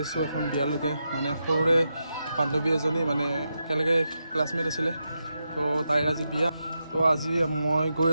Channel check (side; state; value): both; inverted; correlation -0.86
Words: আছোঁ এখন বিয়ালৈকে মানে সৰুৰে বান্ধৱী এজনী মানে একেলগে ক্লাছমেট আছিলে তো তাইৰ আজি বিয়া তো আজি মই গৈ